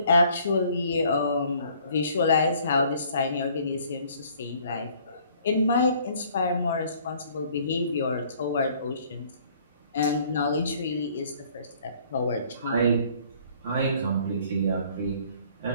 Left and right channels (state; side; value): inverted; both; correlation -0.58